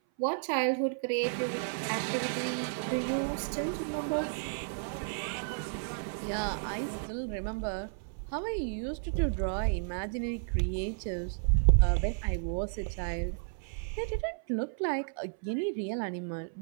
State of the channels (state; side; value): silent; left; 56 dB below the other